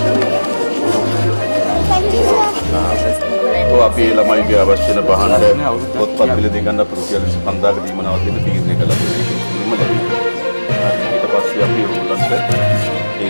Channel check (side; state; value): both; inverted; correlation -1.00